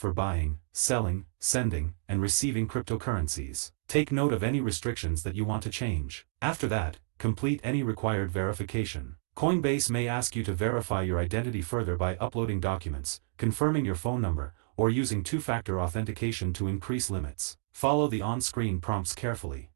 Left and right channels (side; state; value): left; silent; digital silence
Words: buying, selling, sending, and receiving cryptocurrencies. Take note of any restrictions that you want to change. After that, complete any required verification. Coinbase may ask you to verify your identity further by uploading documents, confirming your phone number, or using two-factor authentication to increase limits. Follow the on-screen prompts carefully.